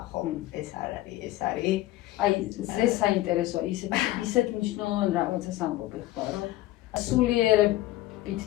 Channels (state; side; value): quieter; right; 16.3 dB